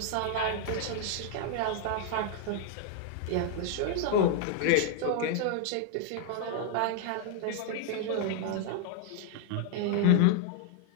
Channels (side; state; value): both; different; correlation 0.00